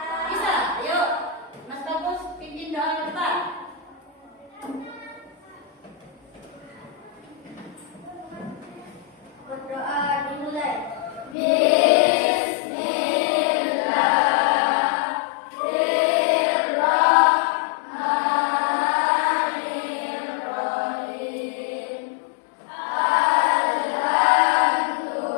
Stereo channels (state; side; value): drops out; right; at 11.4 s